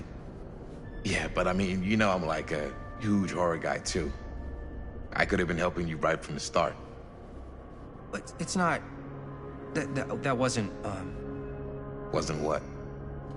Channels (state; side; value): identical; both; correlation 1.00